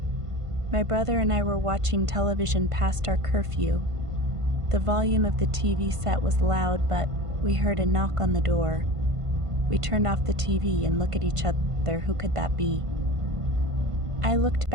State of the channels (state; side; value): late; left; 1.5 ms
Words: My brother and I were watching television past our curfew. The volume of the TV set was loud, but we heard a knock on the door. We turned off the TV and looked at each other. Who could that be? I looked